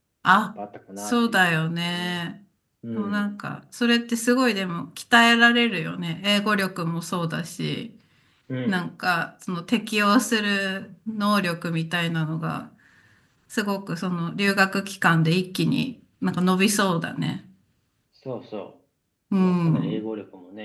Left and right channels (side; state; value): both; identical; correlation 1.00